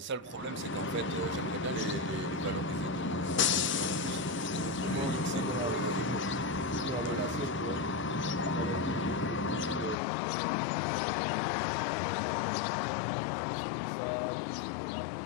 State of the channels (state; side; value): drops out; right; at 10.0 s